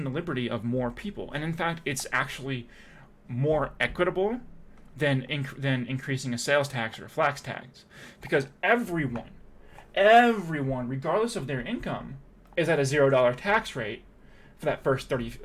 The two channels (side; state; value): both; identical; correlation 1.00